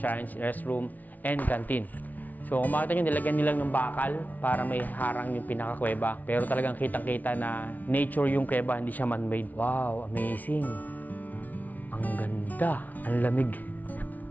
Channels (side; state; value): right; late; 0.077 ms